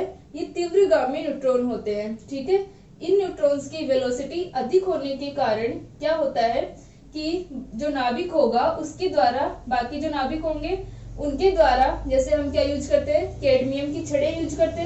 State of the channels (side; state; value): both; identical; correlation 1.00